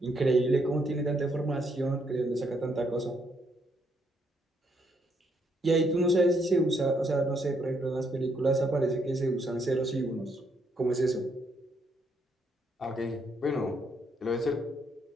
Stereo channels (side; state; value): both; normal; correlation 0.73